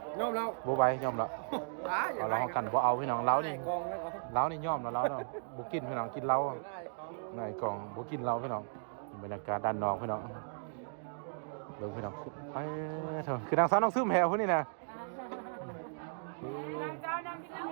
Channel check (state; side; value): silent; left; digital silence